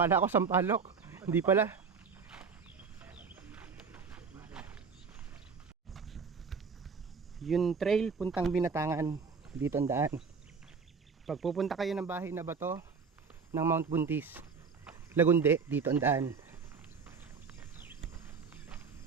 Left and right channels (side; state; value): left; quieter; 5.5 dB